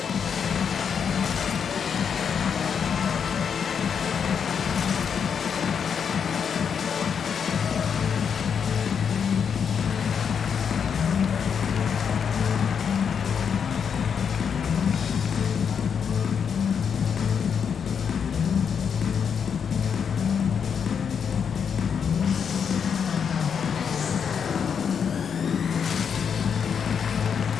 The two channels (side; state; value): right; quieter; 7.0 dB